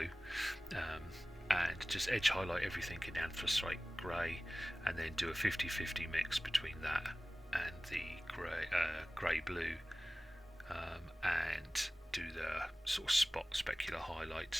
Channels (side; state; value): both; normal; correlation 0.98